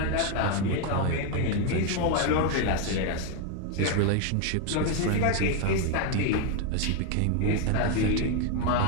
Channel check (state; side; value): different; both; correlation 0.01